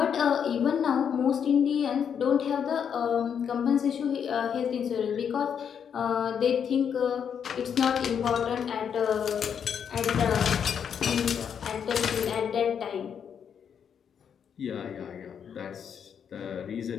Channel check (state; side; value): quieter; right; 7.7 dB